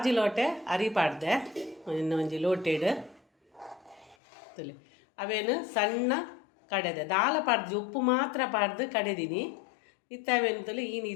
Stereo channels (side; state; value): right; drops out; at 4.2 s